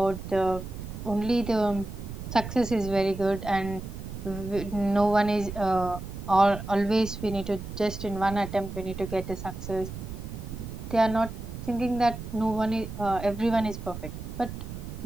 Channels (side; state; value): right; noise; rumble, 9 dB below the sound